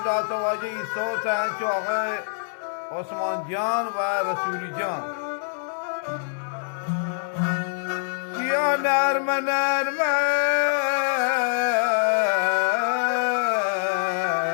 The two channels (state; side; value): silent; right; digital silence